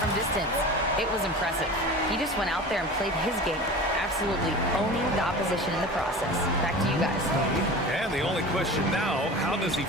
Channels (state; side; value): normal; both; correlation 0.35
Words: distance. It was impressive. He just went out there and played his game, absolutely owning the opposition in the process. Back to you guys. And the only question now, how does he